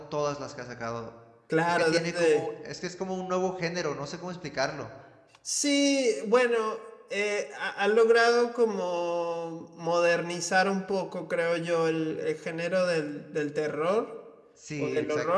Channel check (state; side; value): identical; both; correlation 1.00